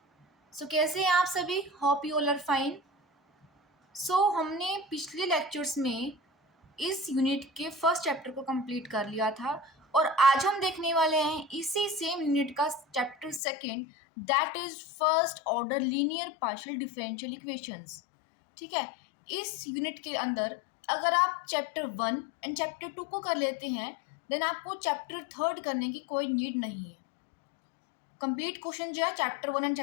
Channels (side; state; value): right; drops out; at 13.4 s